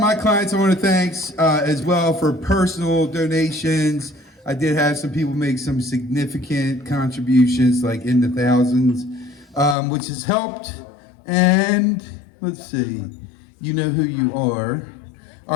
clients I want to thank as well for personal donations. I did have some people make some significant contributions, like in the thousands, which has helped. And let's see, you know who you are.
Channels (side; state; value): right; drops out; at 9.8 s